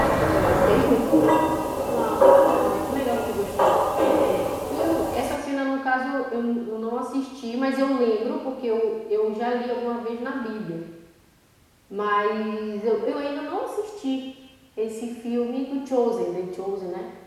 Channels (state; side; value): identical; both; correlation 1.00